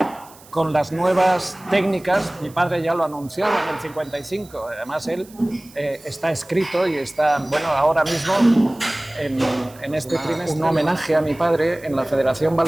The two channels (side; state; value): right; noise; hiss, 24 dB below the sound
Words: con las nuevas técnicas. Mi padre ya lo anunciaba en el 55, además él está escrito y está, bueno, ahora mismo en este trimestre, un homenaje a mi padre en la Federación